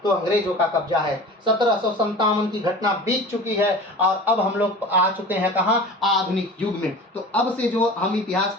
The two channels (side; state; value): both; normal; correlation 0.37